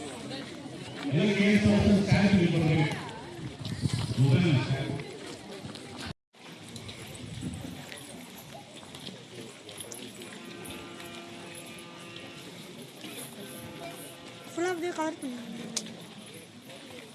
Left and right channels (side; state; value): both; identical; correlation 1.00